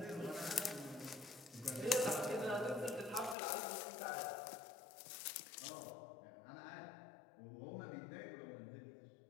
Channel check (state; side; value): drops out; right; at 3.4 s